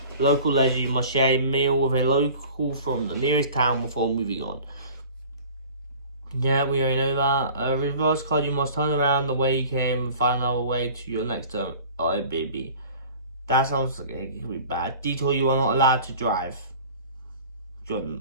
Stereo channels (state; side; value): inverted; both; correlation -0.44